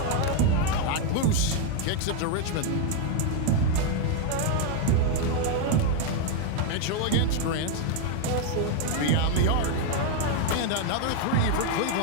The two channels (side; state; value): both; different; correlation 0.01